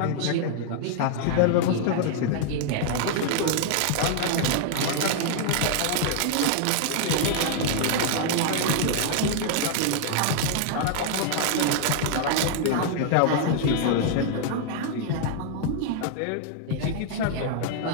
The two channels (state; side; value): different; both; correlation 0.00